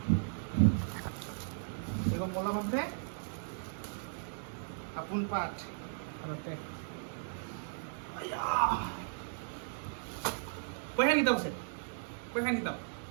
এগো মলম আছে, আপোন পাঠ ঘৰতে। পইচা কিতাপ আছে, পইচা কিতাপ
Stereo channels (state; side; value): silent; left; digital silence